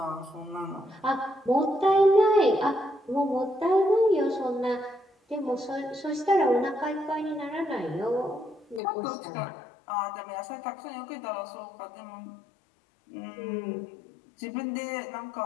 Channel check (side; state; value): right; drops out; at 8.8 s